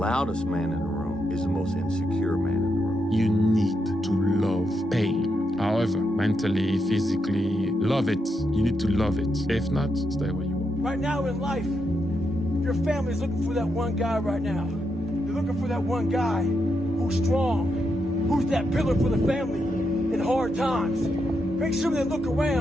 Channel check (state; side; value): normal; both; correlation 0.83